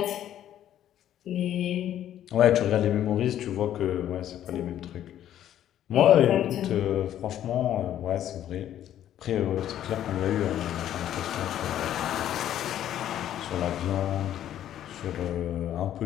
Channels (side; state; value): right; quieter; 11.4 dB